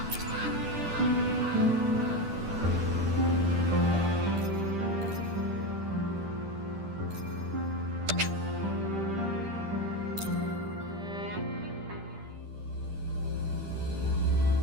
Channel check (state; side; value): late; left; 10 ms